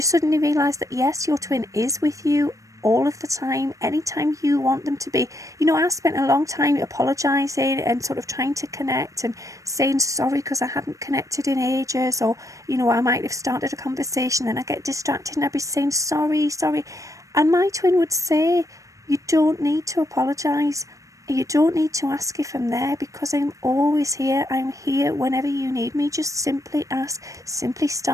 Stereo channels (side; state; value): left; late; 0.16 ms